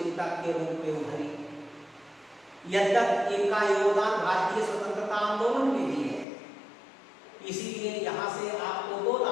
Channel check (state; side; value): drops out; right; at 6.2 s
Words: के रूप में उभरी। यद्यपि इनका योगदान भारतीय स्वतंत्रता आंदोलन में भी है, इसीलिए